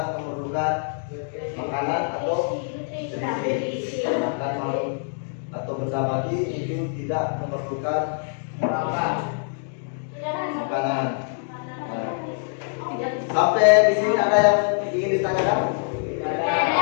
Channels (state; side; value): silent; right; digital silence